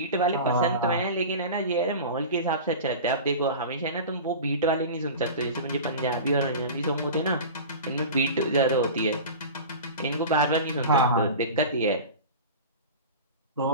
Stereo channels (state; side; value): inverted; both; correlation -0.32